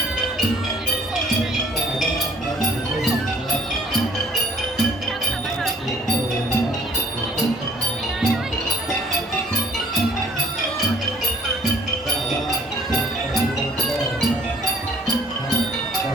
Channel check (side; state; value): both; normal; correlation 0.56